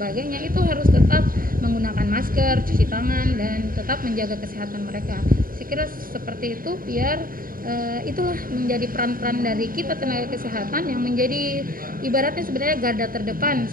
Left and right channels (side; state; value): left; late; 0.41 ms